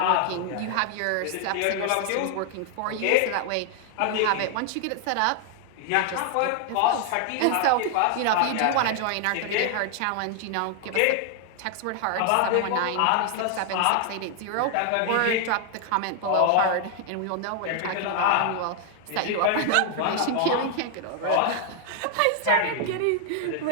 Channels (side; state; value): both; different; correlation 0.00